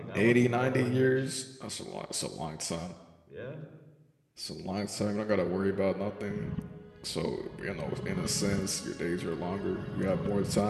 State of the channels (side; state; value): both; identical; correlation 1.00